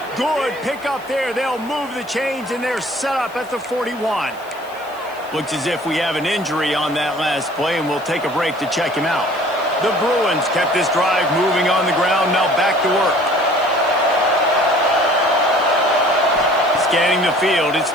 Good pick up there. They'll move the chains, and they're set up at the 41. Looks as if we have an injury on that last play, and we'll take a break to check him out. The Bruins kept this drive moving on the ground. Now back to work. Scanning the field, it's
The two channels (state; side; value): noise; left; hiss, 24 dB below the sound